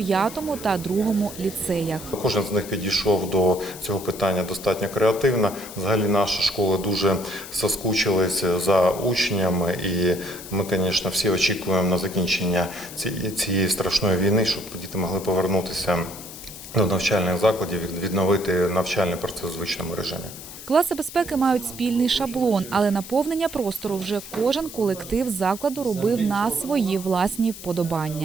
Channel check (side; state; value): left; noise; hiss, 13 dB below the sound